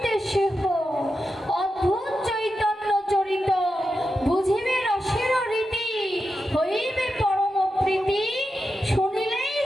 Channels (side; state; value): both; normal; correlation 0.89